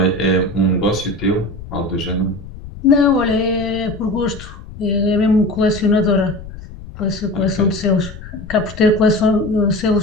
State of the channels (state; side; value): noise; left; rumble, 14 dB below the sound